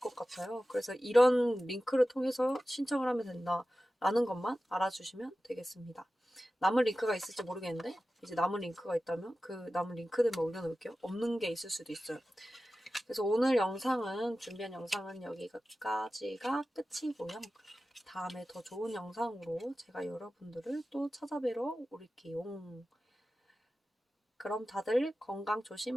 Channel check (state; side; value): normal; both; correlation 0.95